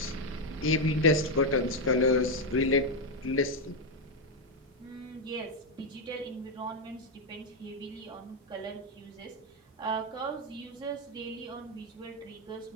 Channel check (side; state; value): both; normal; correlation 0.04